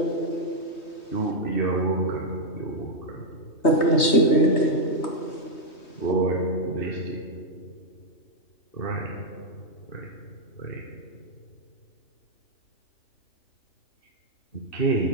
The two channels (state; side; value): late; right; 3.2 ms